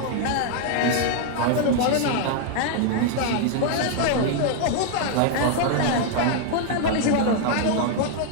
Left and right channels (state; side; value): different; both; correlation 0.00